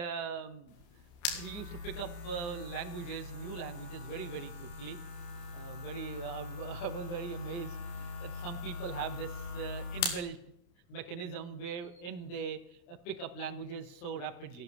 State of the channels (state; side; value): late; right; 29 ms